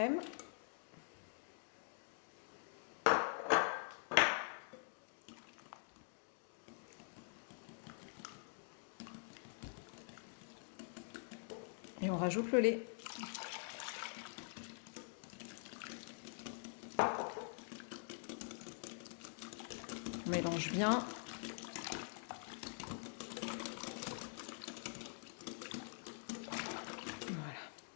Et on rajoute le lait. On mélange bien. Voilà.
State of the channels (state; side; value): silent; right; digital silence